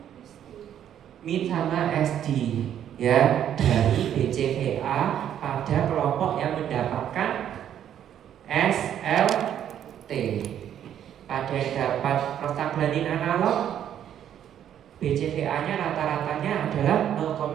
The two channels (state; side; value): quieter; left; 10.1 dB